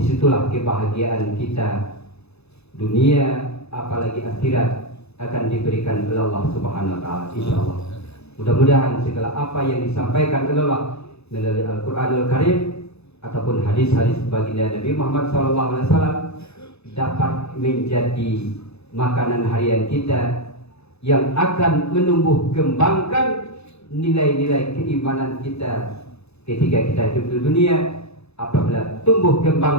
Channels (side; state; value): right; late; 0.79 ms